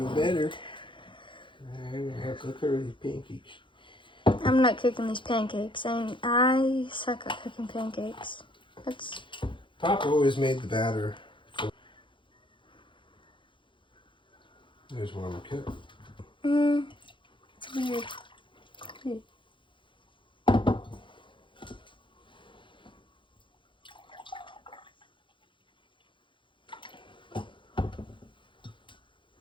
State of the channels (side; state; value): right; late; 0.24 ms